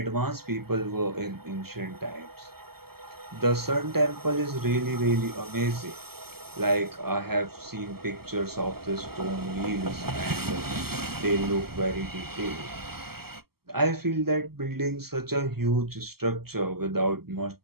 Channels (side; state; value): left; late; 0.95 ms